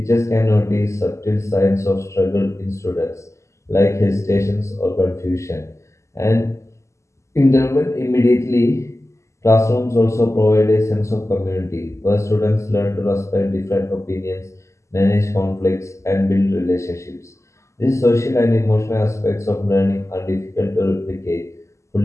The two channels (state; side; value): late; right; 0.14 ms